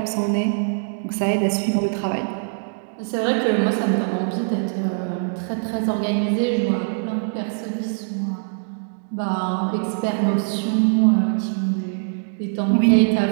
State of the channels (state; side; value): silent; left; digital silence